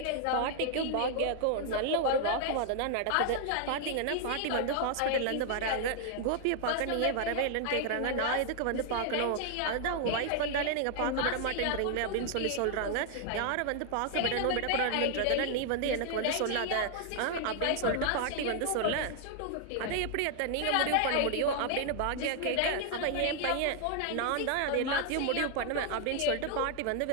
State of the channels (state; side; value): different; both; correlation 0.00